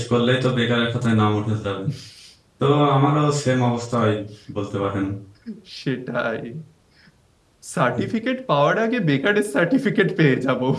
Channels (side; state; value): both; identical; correlation 1.00